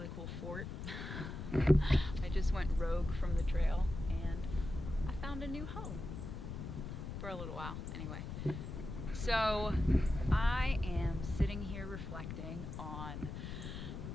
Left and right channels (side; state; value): left; noise; rumble, 7 dB below the sound